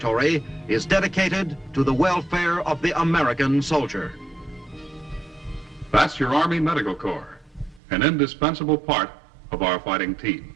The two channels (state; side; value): drops out; left; at 7.8 s